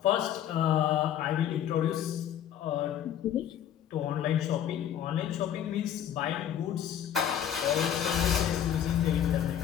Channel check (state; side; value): quieter; right; 10.0 dB